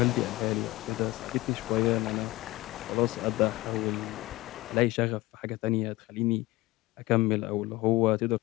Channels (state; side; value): quieter; right; 19.7 dB